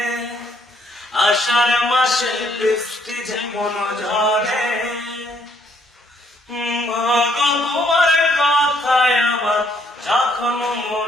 মাসে বৃষ্টি যেমন ঝরে, মা গো তোমার কথায় আমার যখন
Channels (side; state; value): both; normal; correlation 0.68